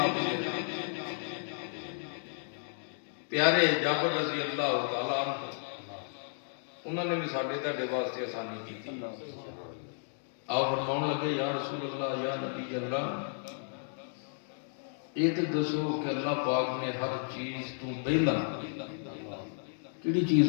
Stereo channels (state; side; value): silent; right; digital silence